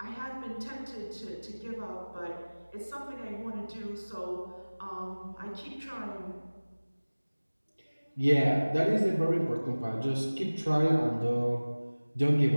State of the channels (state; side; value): inverted; both; correlation -1.00